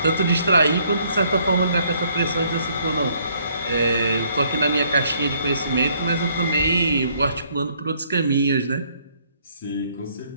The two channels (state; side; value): inverted; both; correlation -0.66